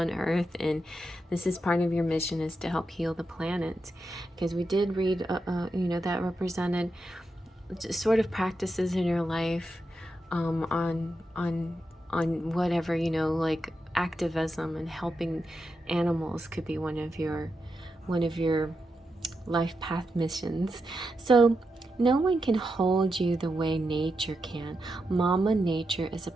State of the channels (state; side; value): normal; both; correlation 0.86